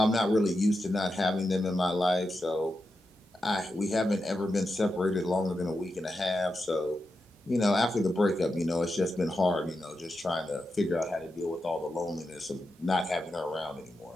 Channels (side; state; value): both; normal; correlation 0.88